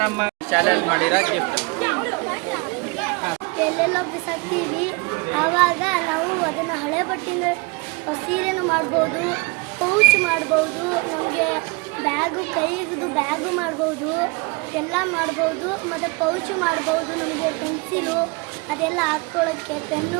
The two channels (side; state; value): left; quieter; 29.2 dB